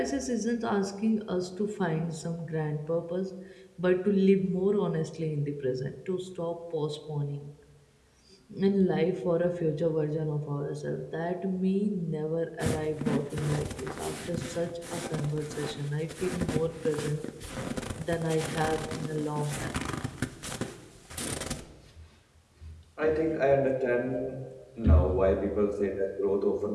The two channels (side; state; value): both; identical; correlation 1.00